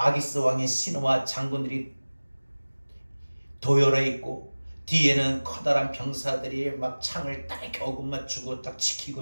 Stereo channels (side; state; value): both; inverted; correlation -1.00